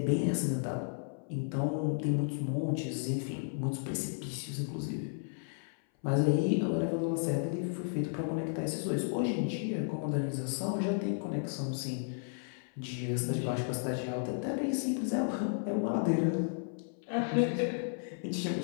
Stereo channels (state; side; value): silent; right; 55 dB below the other